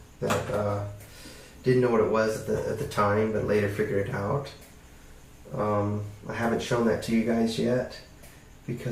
that didn't know what it was at the time, but later figured it out. I haven't shown that to you guys yet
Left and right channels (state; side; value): identical; both; correlation 1.00